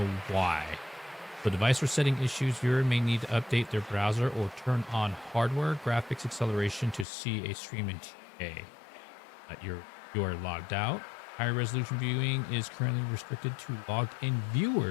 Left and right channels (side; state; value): right; drops out; at 7.1 s